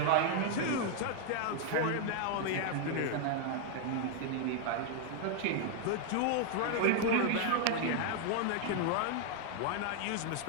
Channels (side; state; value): both; different; correlation 0.00